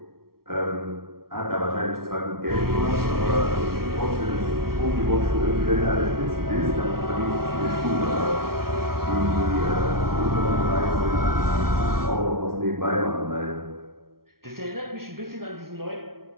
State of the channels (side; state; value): left; late; 0.93 ms